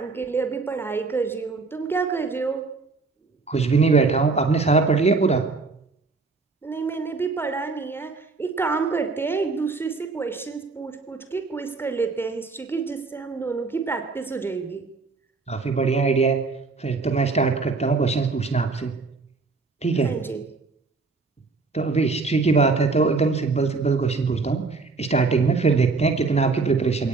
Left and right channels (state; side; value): quieter; left; 4.1 dB